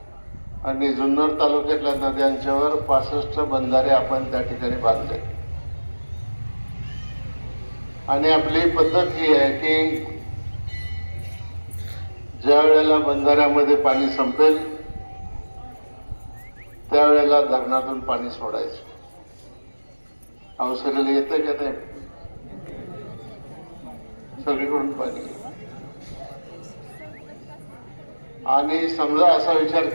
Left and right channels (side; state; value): both; inverted; correlation -1.00